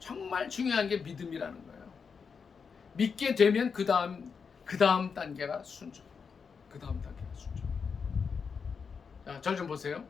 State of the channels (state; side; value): quieter; right; 5.8 dB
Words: 중요한 게 믿음이라는 거예요. 믿게 되면 그 다음 단계가 순종. 그 다음 단계가 순종. 자, 절 좀 보세요.